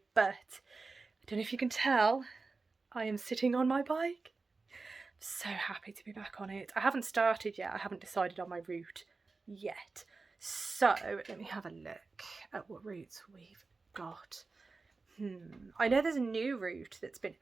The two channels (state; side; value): quieter; left; 4.0 dB